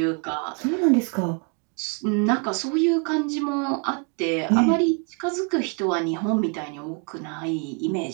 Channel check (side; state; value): left; quieter; 36.6 dB